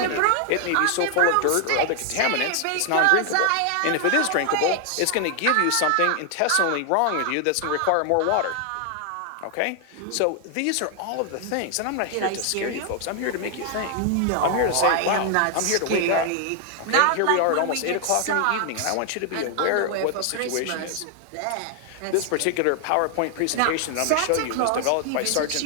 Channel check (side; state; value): both; different; correlation 0.00